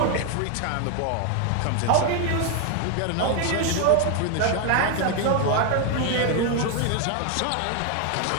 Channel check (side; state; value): both; different; correlation 0.01